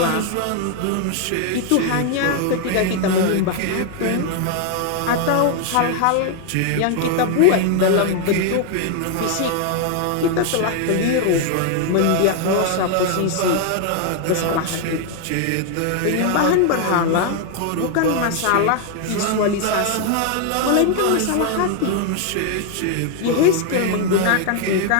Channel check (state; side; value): different; both; correlation 0.00